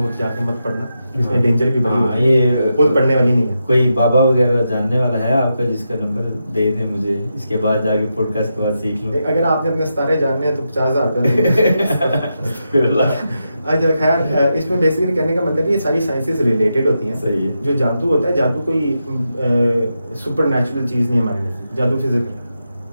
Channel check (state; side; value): inverted; both; correlation -0.86